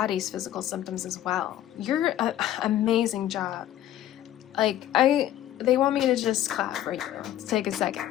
physical symptoms as well. You're an amazing job. They want me to just clap right here. Let's take a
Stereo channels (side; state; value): right; quieter; 12.5 dB